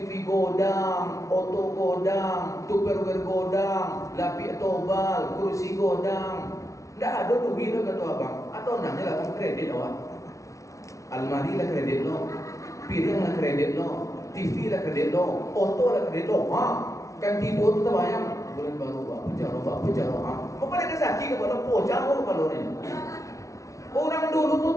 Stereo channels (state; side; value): late; right; 0.15 ms